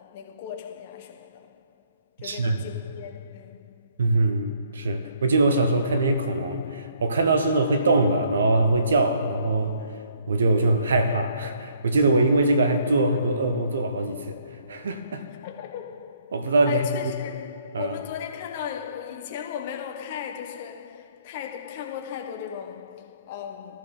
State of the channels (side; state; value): both; inverted; correlation -0.66